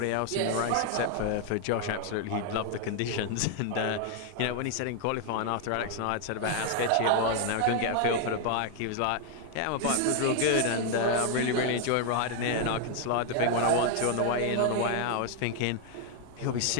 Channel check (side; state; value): both; different; correlation 0.00